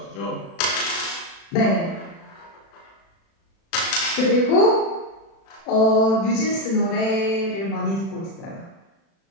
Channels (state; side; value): late; right; 36 ms